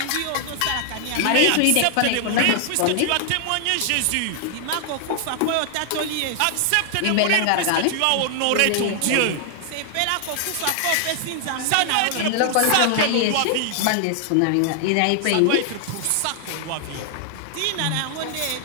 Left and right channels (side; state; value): both; different; correlation 0.00